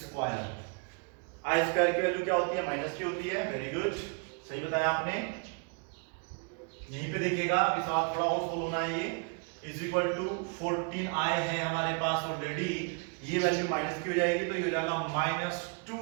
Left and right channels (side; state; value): left; quieter; 37.4 dB